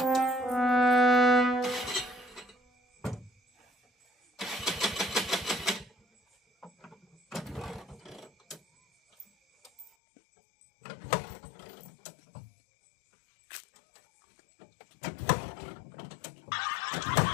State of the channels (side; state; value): right; drops out; at 9.9 s